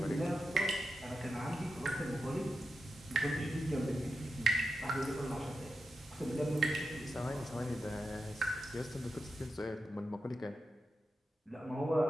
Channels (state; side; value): normal; both; correlation 0.90